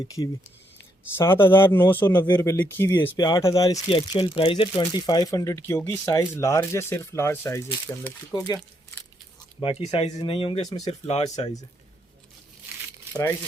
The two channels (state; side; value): normal; both; correlation 0.76